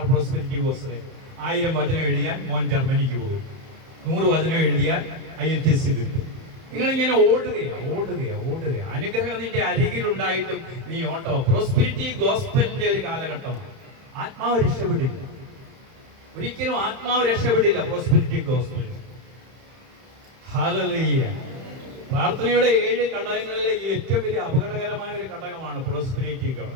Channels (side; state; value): left; late; 31 ms